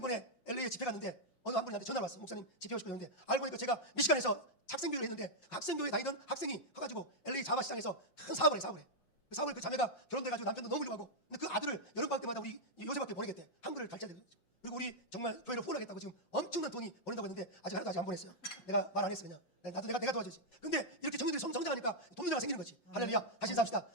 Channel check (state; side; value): late; right; 5.6 ms